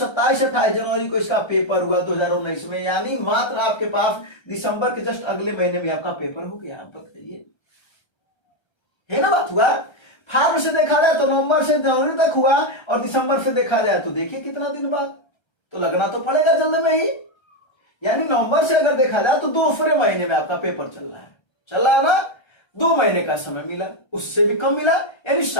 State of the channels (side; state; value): right; late; 1.3 ms